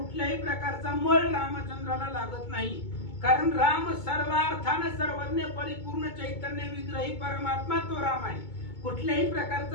प्रकारचा मळ रामचंद्राला लागत नाही. कारण राम सर्वार्थाने सर्वज्ञ परिपूर्ण चैतन्य विग्रही परमात्मा तो राम आहे. कुठल्याही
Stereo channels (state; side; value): late; right; 2.2 ms